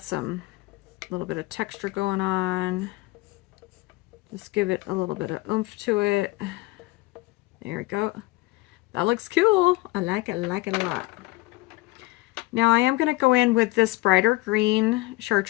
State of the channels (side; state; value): right; quieter; 20.3 dB